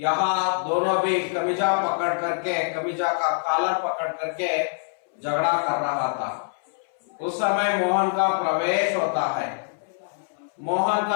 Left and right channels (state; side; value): silent; right; 61 dB below the other